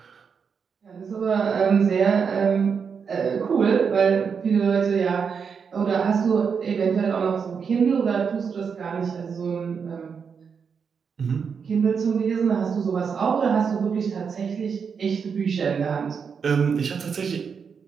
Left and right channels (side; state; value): left; quieter; 6.2 dB